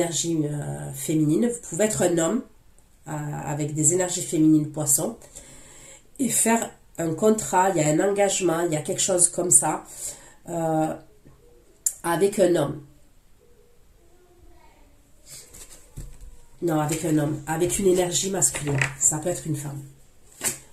féminine. Vous pouvez être un homme avec des énergies féminines poisson et faire un contrat, il y a un engagement, il y a quelque chose comme ça avec un homme. Non, avec un homme, avec une énergie masculine. Ça peut être une femme.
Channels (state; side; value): identical; both; correlation 1.00